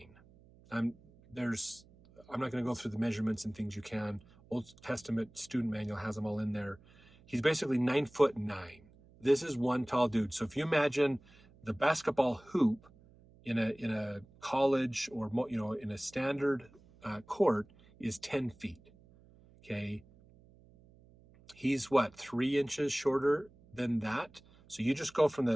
I'm not going to go through the measurements and things. You can. Old Testament student manual has them all in there. He's basically 9'9". This is one tall dude. So if you imagine the basketball hoop in a college or in a standard court is 10 feet. Okay, He's what, 3 inches shorter than that? So you just go from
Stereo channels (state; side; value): noise; right; hum, 26 dB below the sound